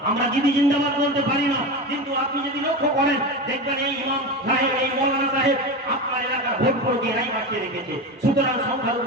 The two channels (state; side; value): normal; both; correlation 0.23